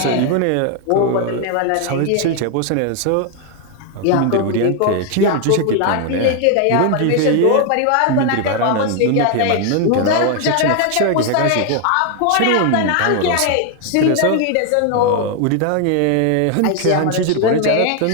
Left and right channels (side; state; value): both; different; correlation 0.01